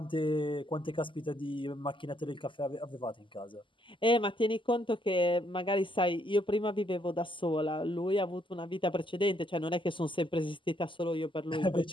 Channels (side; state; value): right; late; 0.25 ms